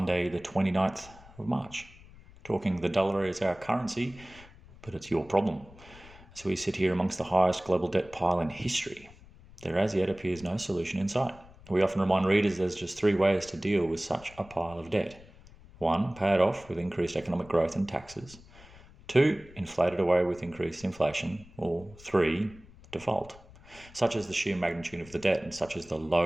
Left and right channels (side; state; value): left; noise; rumble, 22 dB below the sound